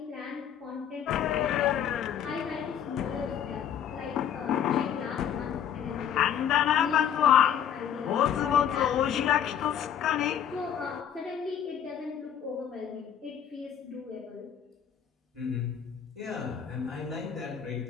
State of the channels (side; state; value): right; quieter; 9.0 dB